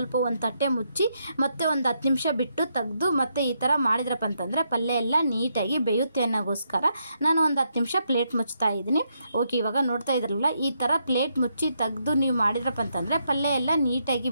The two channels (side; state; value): both; inverted; correlation -0.79